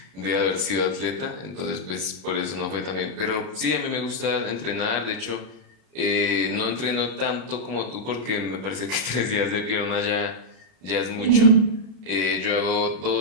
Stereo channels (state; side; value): late; left; 32 ms